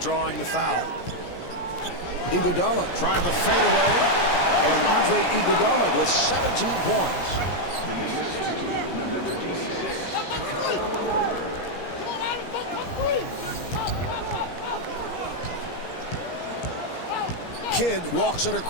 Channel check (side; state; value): right; late; 17 ms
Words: the foul. Iguodala trying the fadeaway, and Andre Iguodala with 17 points. The assist to number 26, Kyle Korver. Kidd walks it